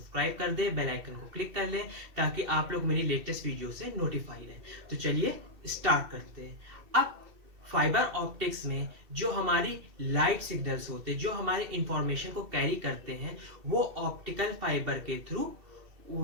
कर दे, बेल आइकन को क्लिक कर ले ताकि आप लोग मेरी लेटेस्ट वीडियो से नोटिफाई रहे। तो चलिए स्टार्ट करते हैं। अब फाइबर ऑप्टिक्स में जो हमारी लाइट सिग्नल्स होते हैं, जो हमारे इंफॉर्मेशन को कैरी करते हैं, वो ऑप्टिकल फाइबर के थ्रू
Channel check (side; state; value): left; late; 2.7 ms